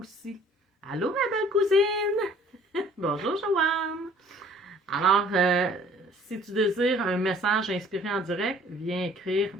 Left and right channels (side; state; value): both; normal; correlation 0.54